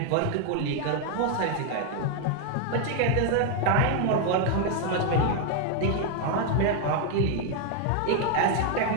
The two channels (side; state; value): both; different; correlation 0.00